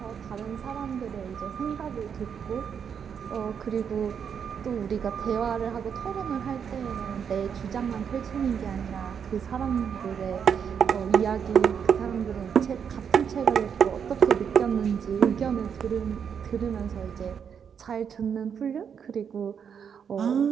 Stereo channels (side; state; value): left; quieter; 7.4 dB